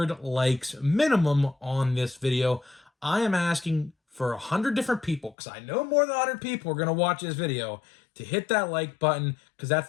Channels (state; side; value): drops out; right; at 5.4 s